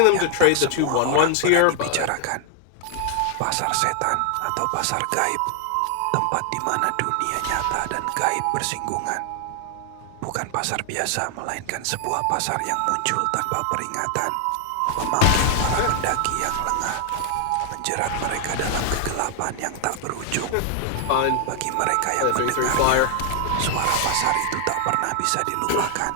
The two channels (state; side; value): different; both; correlation 0.00